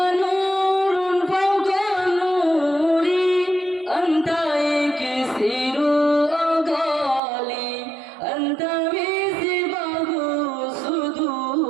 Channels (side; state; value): left; drops out; at 7.2 s